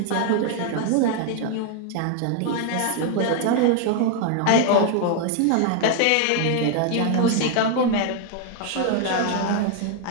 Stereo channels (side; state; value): both; different; correlation 0.00